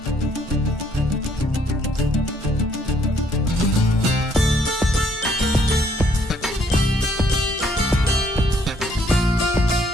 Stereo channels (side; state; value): both; normal; correlation 0.67